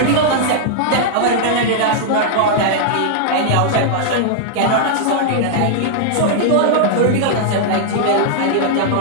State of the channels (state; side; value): different; both; correlation -0.01